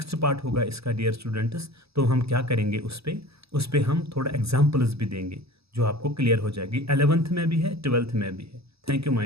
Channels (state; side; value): late; left; 0.78 ms